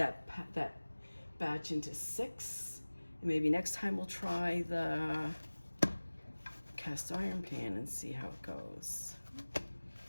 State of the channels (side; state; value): both; inverted; correlation -1.00